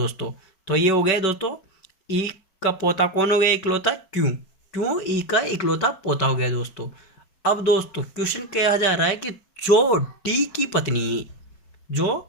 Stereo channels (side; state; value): right; late; 5.3 ms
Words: तो ये हो गया दोस्तों ई का पोता कौन हो गया, इकलौता क्यों ई का इकलौता पोता हो गया दोस्तों। अब दोस्तों क्वेश्चन कहा जा रहा है कि जो डी की पत्नी